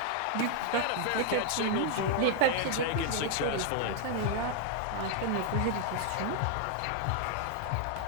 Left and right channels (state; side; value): different; both; correlation 0.00